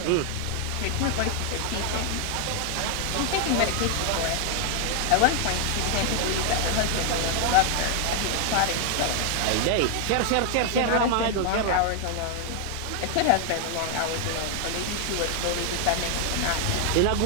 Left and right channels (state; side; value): different; both; correlation 0.00